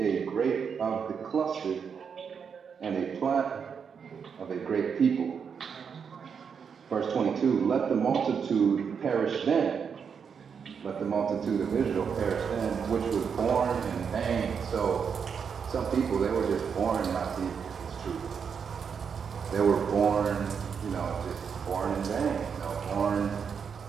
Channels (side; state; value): left; quieter; 6.6 dB